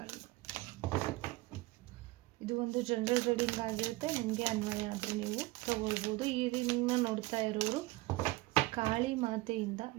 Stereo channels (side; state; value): left; quieter; 20.3 dB